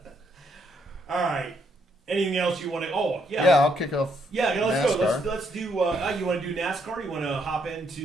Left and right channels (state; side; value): normal; both; correlation 0.74